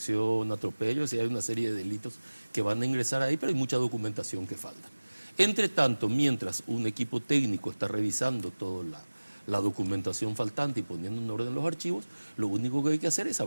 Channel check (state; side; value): inverted; both; correlation -1.00